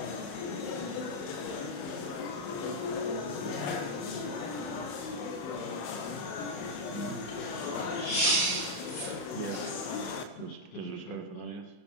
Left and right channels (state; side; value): late; right; 34 ms